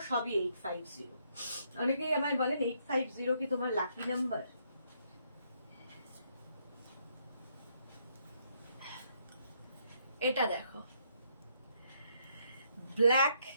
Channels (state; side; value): inverted; both; correlation -0.73